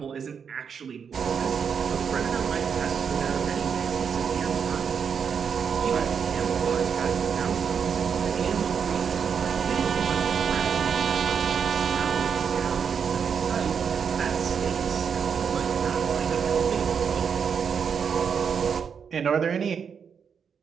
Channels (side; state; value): left; quieter; 6.8 dB